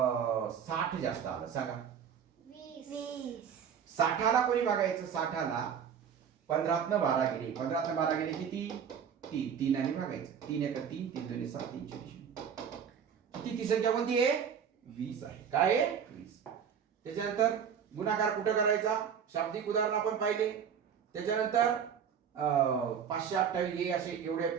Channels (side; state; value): left; quieter; 7.6 dB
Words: 60 जास्त आलं. सांगा 20. 60ला कोणी भागायचं, 60ला 15 तनं 12 गेले, 15 तनं 12 गेले किती 3, 3 आणि भागायचं, 3 1 3 3 2 7 3 0 किती. ती संख्या कोणती आहे 20 आहे. काय आहे 20. त्याच्यानंतर गुणाकार कुठं करायचा, शाब्दिक उदाहरण आपण पाहिले. त्याच्यानंतर 528 हे असे एवढे